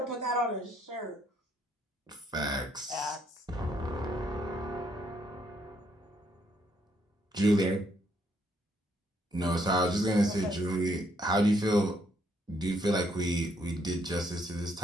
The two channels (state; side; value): normal; both; correlation 0.71